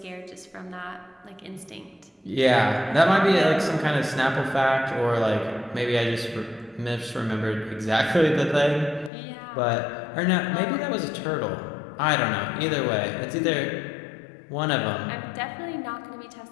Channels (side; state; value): right; drops out; at 9.1 s